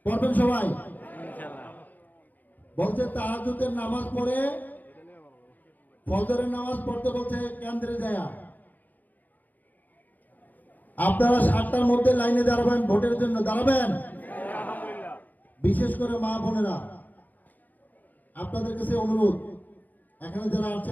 পড়বেন সবাই? বলছে তাহাজ্জুদের নামাজ পড়ে ফজরের নামাজ পড়তে বলছে কেন্দ্রে যায়। আপনারা 7টার মধ্যে লাইনে দাঁড়াবেন, ভোটের জন্য দাঁড়াবেন। বিশেষ করে মা বোনেরা, আপনাদের কাছে অনুরোধ, এখানে যারা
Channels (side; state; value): right; late; 0.083 ms